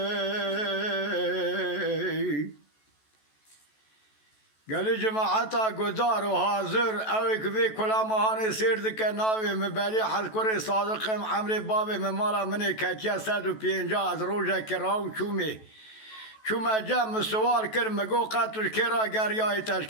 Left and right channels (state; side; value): late; right; 14 ms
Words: جماعتا گذار و حاضر اوی که کلا مهان سیر دکه ناوی مبلی حل کری صادقم عمر بابی ممالا منی کتیا 150 از روژه که راو چومه جمع سوال کر مگو قطوش کرا گریای تش